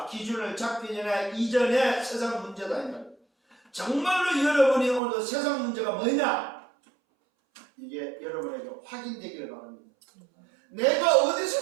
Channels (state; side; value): drops out; left; at 5.0 s